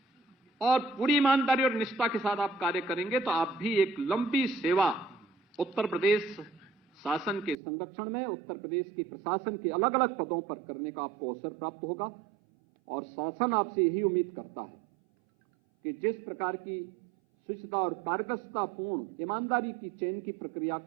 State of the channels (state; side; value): drops out; left; at 7.6 s